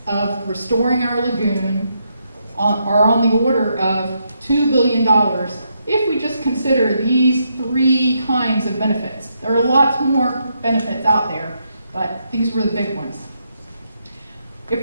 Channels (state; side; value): inverted; both; correlation -0.79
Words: of restoring our lagoon are on the order of $2 billion if we just consider these three kinds of benefits. There are lots more benefits out there, but these were the big ones.